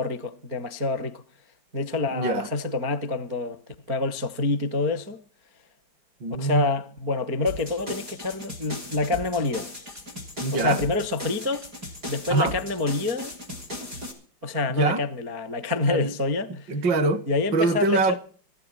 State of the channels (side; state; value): left; late; 4.9 ms